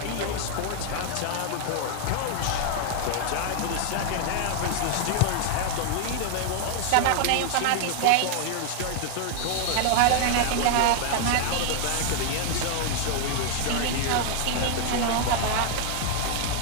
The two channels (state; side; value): different; both; correlation 0.00